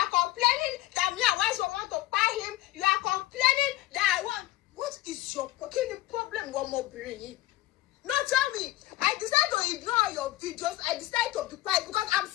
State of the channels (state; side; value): quieter; right; 16.9 dB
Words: complaining that me and wife want to buy him. You are complaining that I want. What is your fucking problem, one more brain? No, tell me. I decided to ignore your videos. I decided to be quiet because I'm